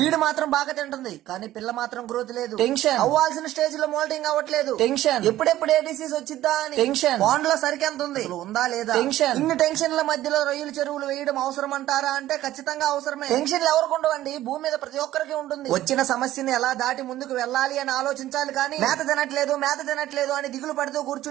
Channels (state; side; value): quieter; left; 14.3 dB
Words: మాత్రం బాగా తింటుంది కానీ పిల్ల మాత్రం గ్రోత్ లేదు. టెన్షన్, అవ్వాల్సిన స్టేజ్ లో మోల్టింగ్ అవ్వట్లేదు. టెన్షన్, ఎప్పుడెప్పుడు ఏ డిసీజ్ వచ్చిద్దా అని. టెన్షన్, బాండ్ లో సరికెంత ఉంది, ఉందా లేదా. టెన్షన్, ఇన్ని టెన్షన్ల మధ్యలో రొయ్యల చెరువులు వేయడం అవసరం అంటారా అంటే ఖచ్చితంగా అవసరమే. టెన్షన్లు ఎవరికి ఉండవండి, భూమి మీద ప్రతి ఒక్కరికి ఉంటుంది. వచ్చిన సమస్యని ఎలా దాటి ముందుకు వెళ్ళాలి అని ఆలోచించాలి కానీ మేత తినట్లేదు అని దిగులు పడుతూ